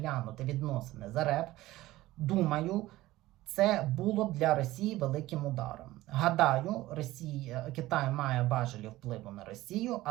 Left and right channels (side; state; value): left; quieter; 17.0 dB